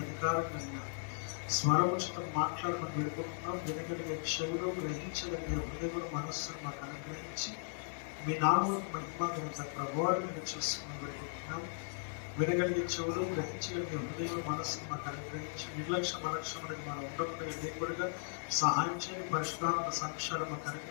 అధికారంగా స్వరముచితం మాట్లాడమని వేడుకుంటున్నాం. వినగలిగే చెవులు గ్రహించగలిగే హృదయ మనస్సును మాకు అనుగ్రహించి మీ నామములకు మహిమ ఘనత ప్రభావాలుగా చేసుకుని వేడుకుంటున్నాం. వినగలిగే చెవులు గ్రహించగలిగే హృదయ మనస్సును మాకు అనుగ్రహించి నిర్లక్ష్యం అనేది మనం ఉండకుండా దేవుడిగా సహాయం చేయని పరిశుద్ధాత్మ సంక్షారం మాకు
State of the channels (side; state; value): right; silent; 53 dB below the other